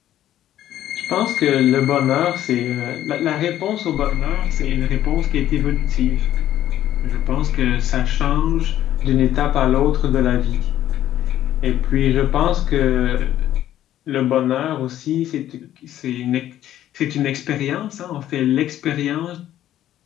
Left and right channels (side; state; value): right; quieter; 12.3 dB